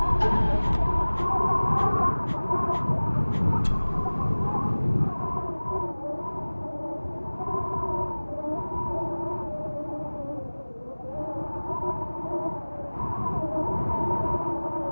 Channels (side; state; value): both; inverted; correlation -1.00